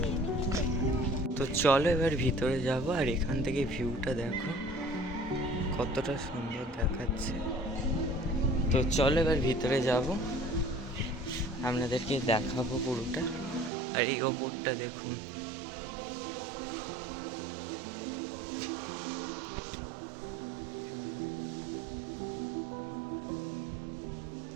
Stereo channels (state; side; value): drops out; left; at 13.7 s